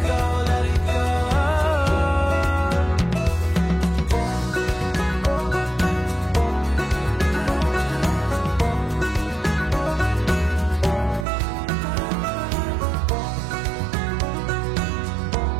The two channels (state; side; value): drops out; left; at 11.2 s